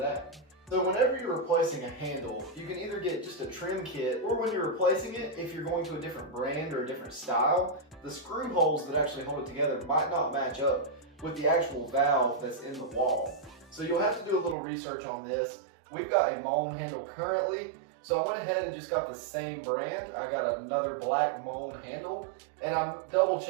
So whenever you're replacing a handle, you can either get just a trim kit, or when you're replacing it, if you're going to a different brand or a different style, the screw holes that actually hold it together might not match up with the actual valve that's in the wall. So you'll have to do a little research on this. We've got a Moen handle currently, so I went ahead and just got the same brand. I got another black Moen handle, and I'm double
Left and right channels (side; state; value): left; drops out; at 14.6 s